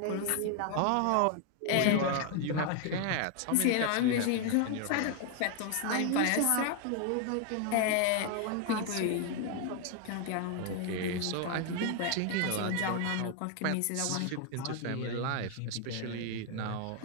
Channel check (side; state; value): both; different; correlation 0.01